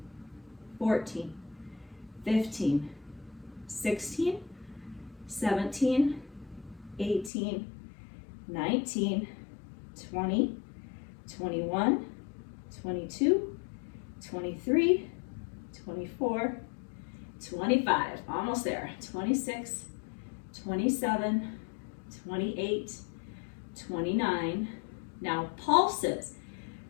14, 15, 16, 17, 18, 19, 20, 21, 22, 23, 24, 25, almost there, 26, 27, 28, 29. Now pulses.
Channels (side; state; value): right; drops out; at 7.3 s